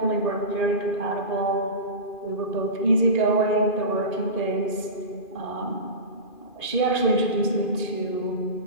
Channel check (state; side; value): late; right; 2.4 ms